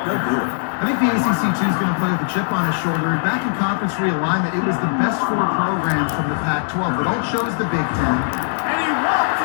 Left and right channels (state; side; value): silent; right; digital silence